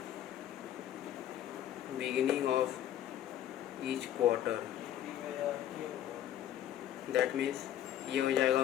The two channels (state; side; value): quieter; right; 11.4 dB